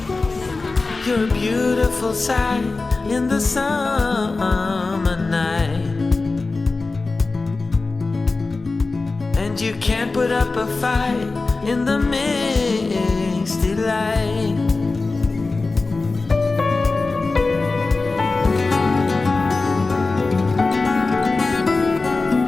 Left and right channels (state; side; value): quieter; right; 3.7 dB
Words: You're a beautiful sight in the summer night. And you can't put up a fight in the misty light.